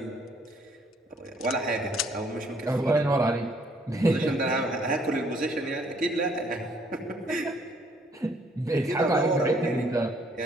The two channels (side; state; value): both; normal; correlation 0.65